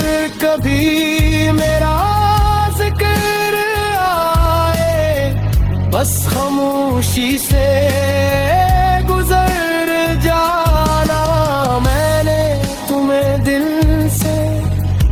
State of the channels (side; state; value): both; identical; correlation 1.00